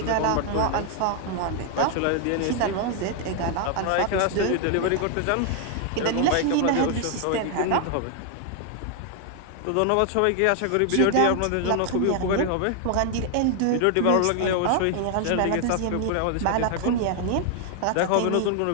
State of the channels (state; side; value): different; both; correlation 0.00